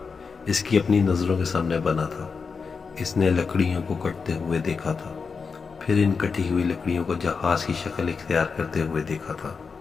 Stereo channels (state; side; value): quieter; right; 5.2 dB